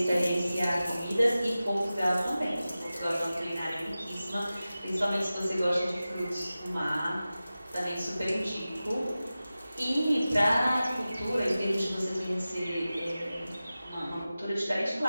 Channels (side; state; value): both; inverted; correlation -0.95